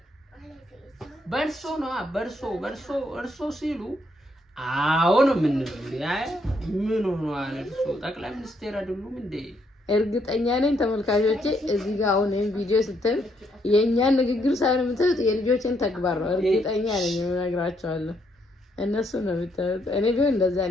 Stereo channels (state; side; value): normal; both; correlation 0.74